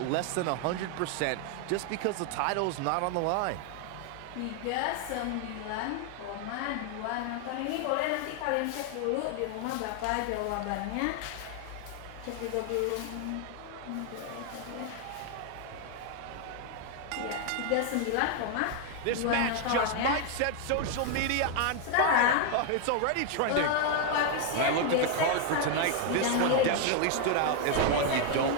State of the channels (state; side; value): different; both; correlation 0.00